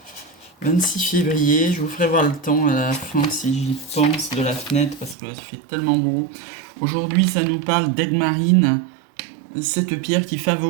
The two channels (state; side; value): drops out; left; at 5.2 s